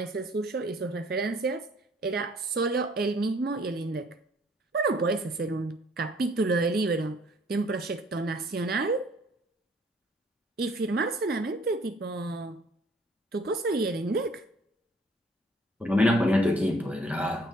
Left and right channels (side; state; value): both; normal; correlation 0.59